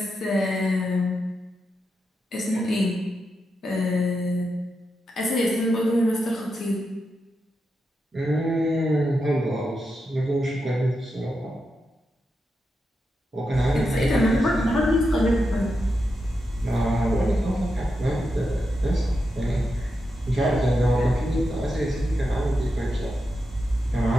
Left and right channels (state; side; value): normal; both; correlation 0.87